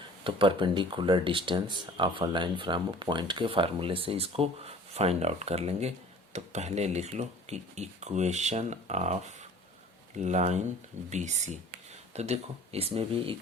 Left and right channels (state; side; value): normal; both; correlation 0.47